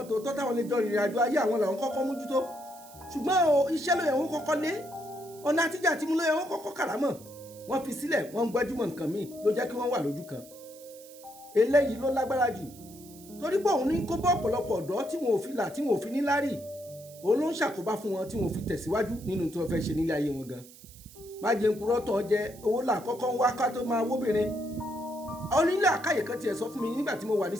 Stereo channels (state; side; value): noise; right; hiss, 20 dB below the sound